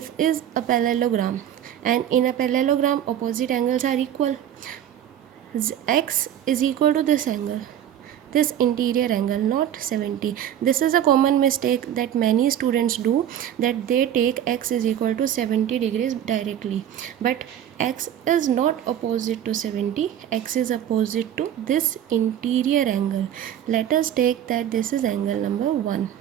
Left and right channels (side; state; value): left; quieter; 10.4 dB